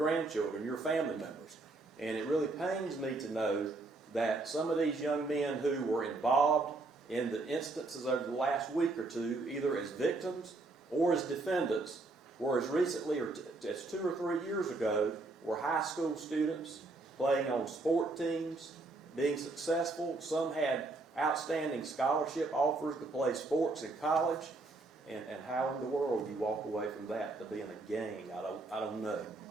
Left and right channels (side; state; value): left; quieter; 3.3 dB